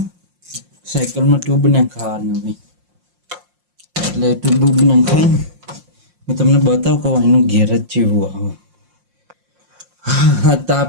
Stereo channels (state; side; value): late; left; 5.6 ms